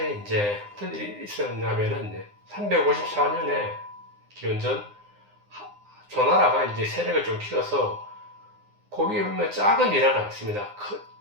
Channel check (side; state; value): left; late; 9.8 ms